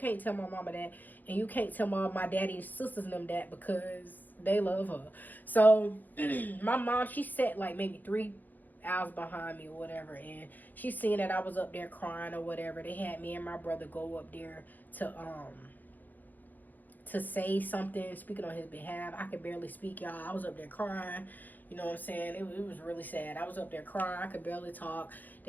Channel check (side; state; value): right; late; 0.085 ms